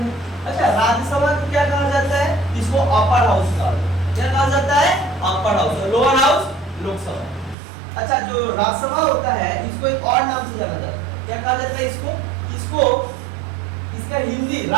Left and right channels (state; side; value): drops out; left; at 7.6 s